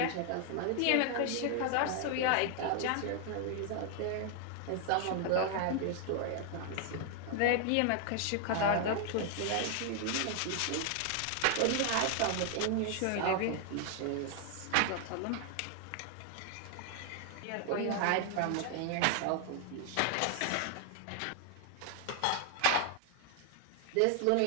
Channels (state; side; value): different; both; correlation 0.00